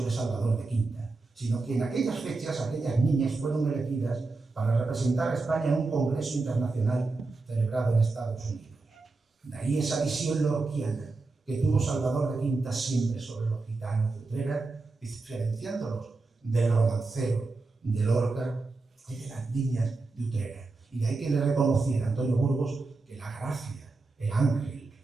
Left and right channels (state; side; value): quieter; left; 3.6 dB